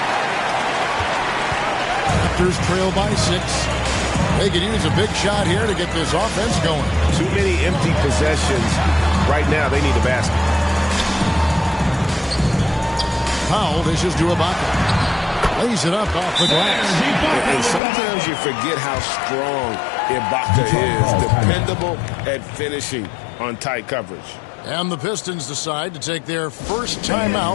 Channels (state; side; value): drops out; right; at 17.8 s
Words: Raptors trail by 6. They could use a big shot here to get this offense going. Too many empty possessions. Right now, they need a basket. Powell dishes to Ibaka. Lays it up off the glass. And sometimes you forget how strong Ibaka is. Dependable at finishing on tight coverage. And the Pistons decide to take their first